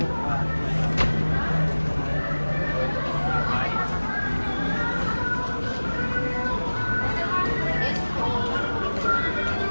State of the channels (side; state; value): both; inverted; correlation -1.00